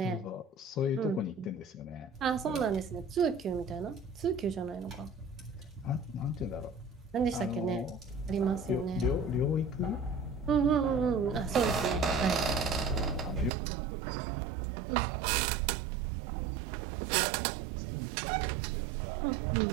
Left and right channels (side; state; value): left; drops out; at 13.5 s